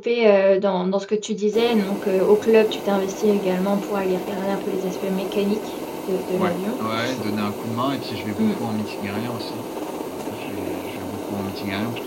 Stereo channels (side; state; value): both; identical; correlation 1.00